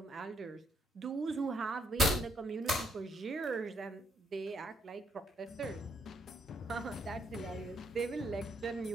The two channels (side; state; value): both; normal; correlation 0.73